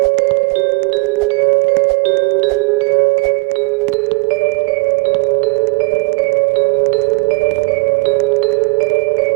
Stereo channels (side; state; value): left; quieter; 29.1 dB